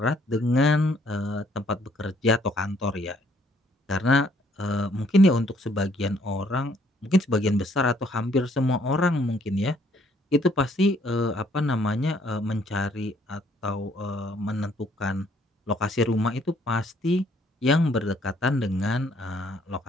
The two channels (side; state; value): both; normal; correlation 0.65